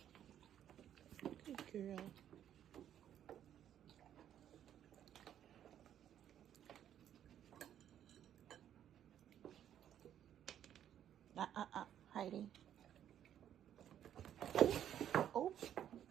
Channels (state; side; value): quieter; left; 10.3 dB